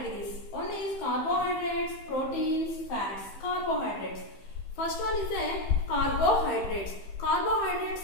One is carbohydrates, proteins, fats. Carbohydrates. First one is carbohydrates. Carbohydrates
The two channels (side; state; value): right; late; 15 ms